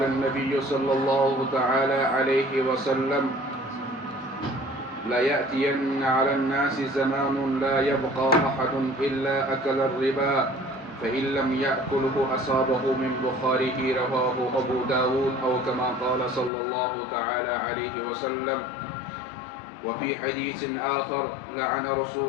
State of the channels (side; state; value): right; drops out; at 16.5 s